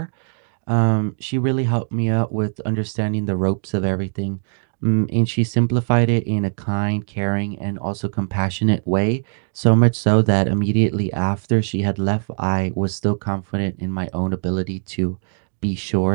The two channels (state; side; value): silent; left; digital silence